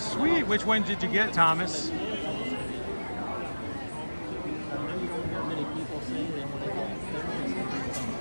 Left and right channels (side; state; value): both; inverted; correlation -1.00